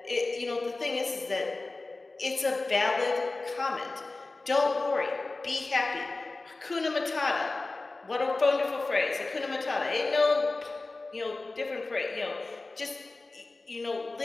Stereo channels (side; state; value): right; quieter; 3.3 dB